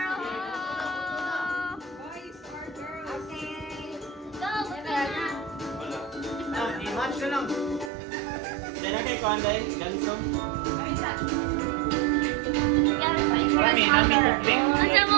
Boys or girls? I-match na lang. Diyan na kay Kwanday, ganso. Kami, namin kupling.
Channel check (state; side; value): drops out; left; at 7.9 s